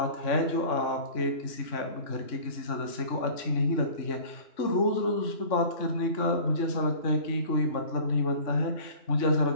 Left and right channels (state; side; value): late; right; 3.5 ms